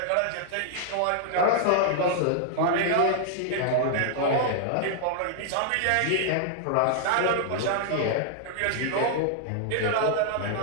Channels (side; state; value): both; different; correlation -0.01